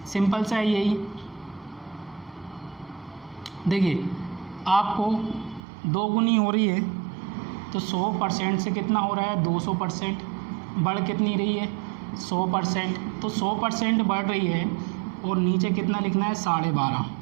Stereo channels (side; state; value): left; drops out; at 5.6 s